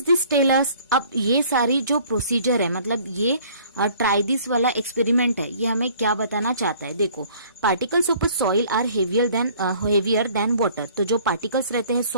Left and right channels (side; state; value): both; inverted; correlation -0.54